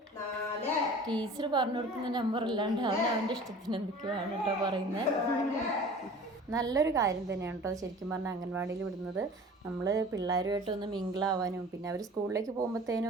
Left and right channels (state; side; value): normal; both; correlation 0.43